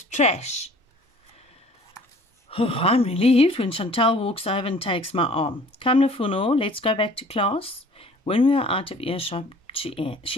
trash." Oh, I'm relieved when Chantal walks over and takes my arm. "Come, Lufuno, let's go back to class." When we are out of earshot, she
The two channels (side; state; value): both; normal; correlation 0.50